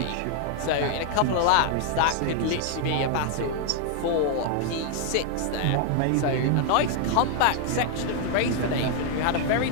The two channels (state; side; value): different; both; correlation 0.00